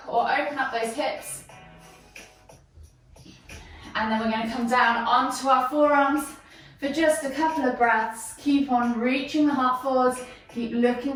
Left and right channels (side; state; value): both; identical; correlation 1.00